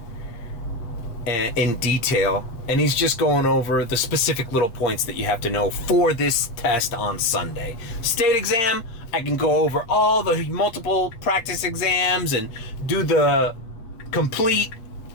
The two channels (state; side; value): late; right; 8.6 ms